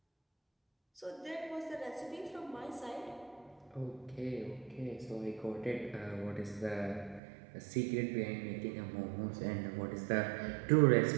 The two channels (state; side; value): drops out; left; at 7.2 s